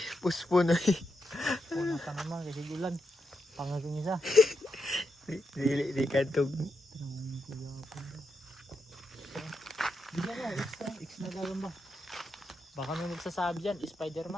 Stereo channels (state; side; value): normal; both; correlation 0.84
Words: Puspo na eh. Una pa naman kasi ulan. Pangaging isa. Di kantog. Bigyan mo, X na gagamba. Baka may magsasabi dyan,